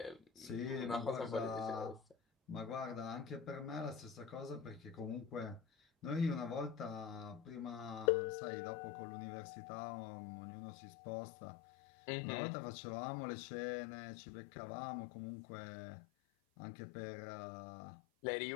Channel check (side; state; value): right; drops out; at 8.1 s